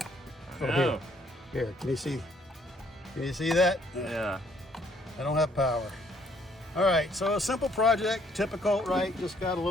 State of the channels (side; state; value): both; normal; correlation 0.66